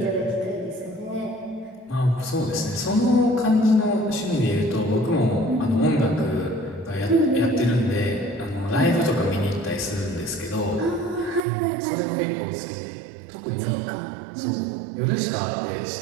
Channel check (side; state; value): left; drops out; at 11.5 s